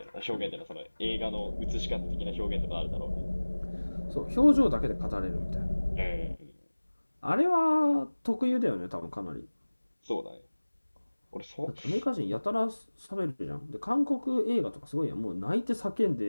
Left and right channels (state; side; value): inverted; both; correlation -1.00